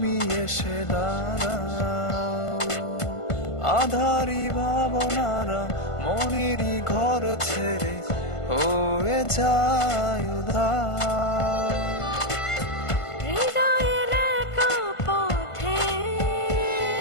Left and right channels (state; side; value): late; right; 1.5 ms